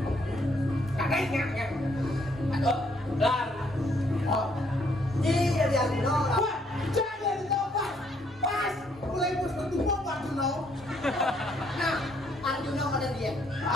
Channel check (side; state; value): both; normal; correlation 0.69